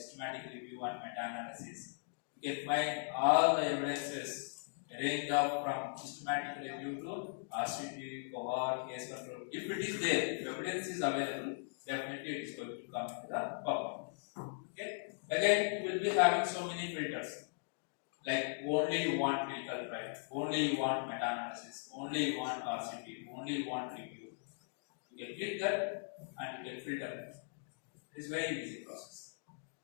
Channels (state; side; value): silent; right; digital silence